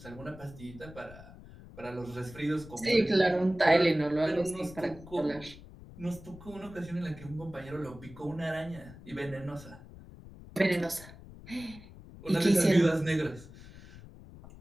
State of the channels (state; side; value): noise; left; rumble, 18 dB below the sound